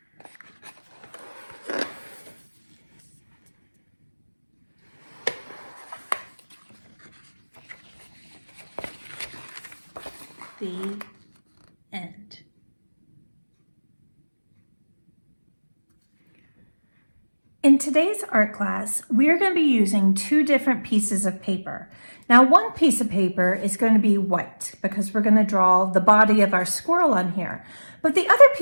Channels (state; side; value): inverted; both; correlation -1.00